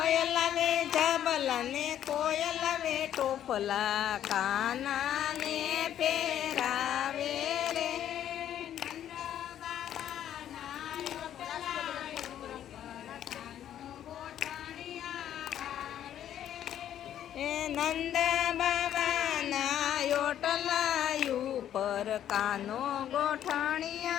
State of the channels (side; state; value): right; quieter; 10.7 dB